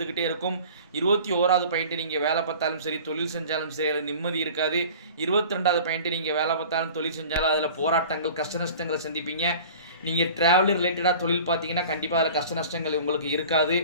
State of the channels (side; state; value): both; inverted; correlation -0.42